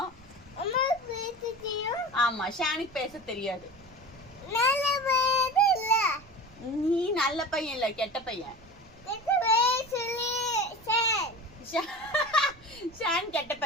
ஆமா, ஷானுக்கு பேச தெரியாது. நீ நல்ல பையன் இல்ல, கெட்ட பையன். ஷான் கெட்ட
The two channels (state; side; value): noise; right; rumble, 24 dB below the sound